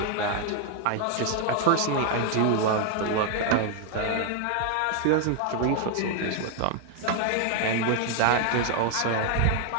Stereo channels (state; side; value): different; both; correlation 0.00